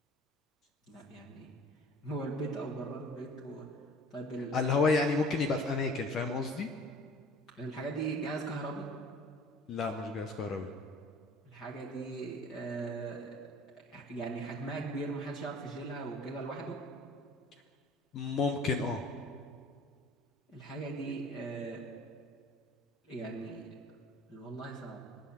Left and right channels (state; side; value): normal; both; correlation 0.48